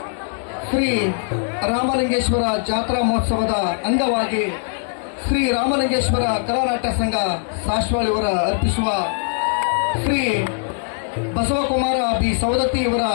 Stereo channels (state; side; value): silent; right; digital silence